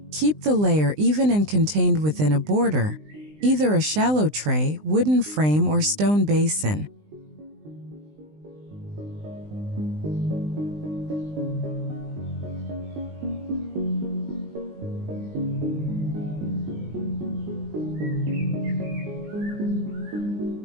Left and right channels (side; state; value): left; late; 20 ms